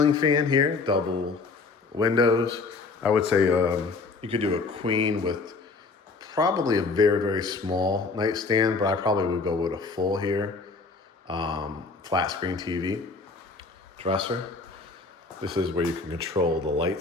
fan here, double windows. I would say you could do a queen with probably a very, very small nightstand, but I probably would go with a full here. Flat screen TV, dresser. This is where you can control the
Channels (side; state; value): right; quieter; 4.1 dB